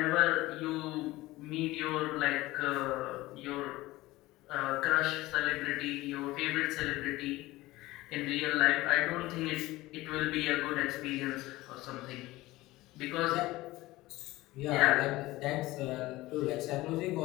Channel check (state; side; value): quieter; right; 18.6 dB